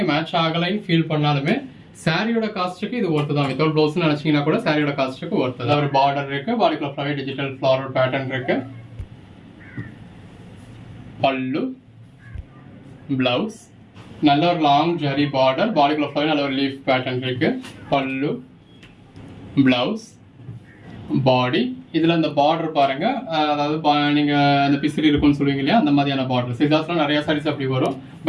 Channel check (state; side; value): identical; both; correlation 1.00